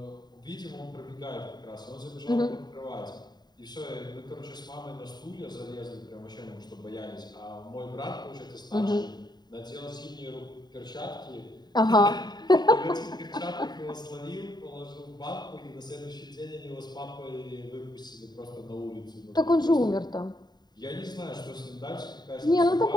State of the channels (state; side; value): late; right; 0.20 ms